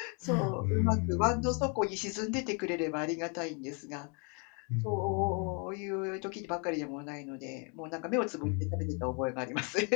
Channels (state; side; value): quieter; right; 36.6 dB